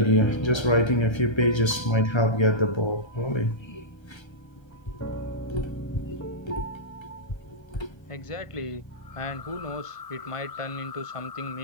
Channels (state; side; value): late; right; 1.3 ms